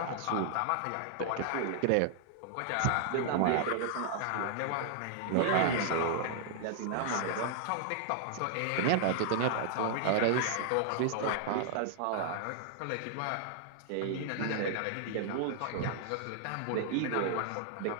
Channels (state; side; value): different; both; correlation -0.01